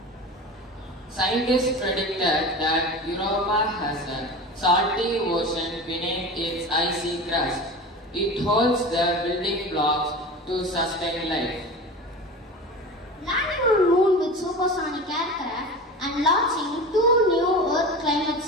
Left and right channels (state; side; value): normal; both; correlation 0.31